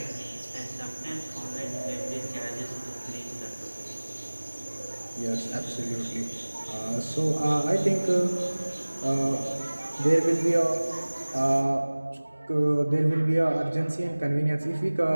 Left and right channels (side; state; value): both; inverted; correlation -1.00